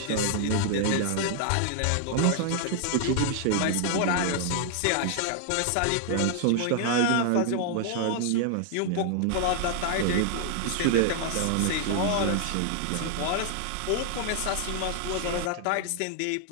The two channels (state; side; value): different; both; correlation 0.00